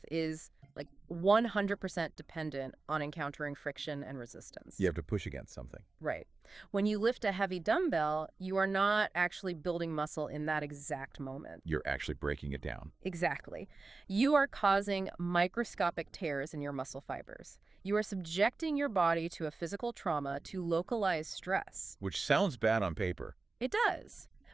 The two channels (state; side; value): quieter; left; 3.7 dB